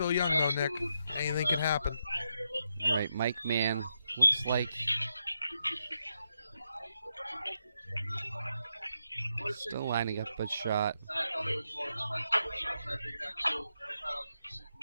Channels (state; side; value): inverted; both; correlation -0.83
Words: young, though, Nick. Anything can happen. All right, Mike Mann looks like still lining up a shot.